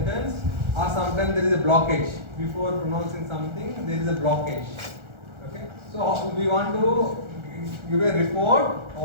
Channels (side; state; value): left; late; 1.4 ms